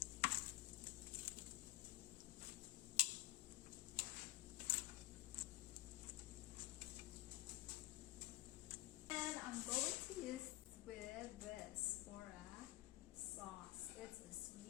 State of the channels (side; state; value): right; quieter; 16.4 dB